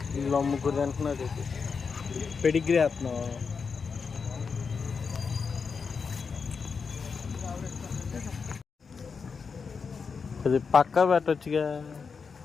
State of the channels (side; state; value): right; quieter; 5.5 dB